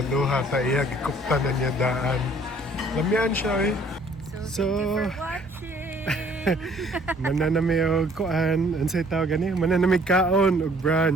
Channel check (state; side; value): normal; both; correlation 0.59